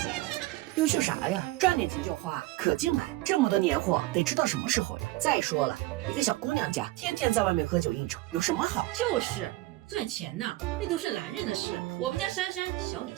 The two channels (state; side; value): quieter; left; 18.9 dB